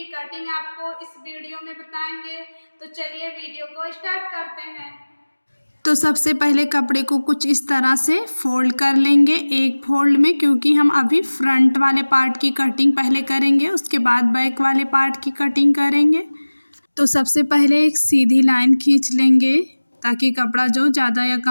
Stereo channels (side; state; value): both; inverted; correlation -1.00